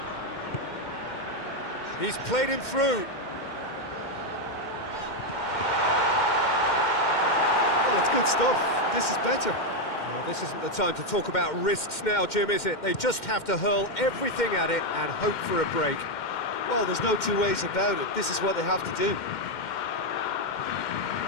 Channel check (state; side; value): late; right; 2.1 ms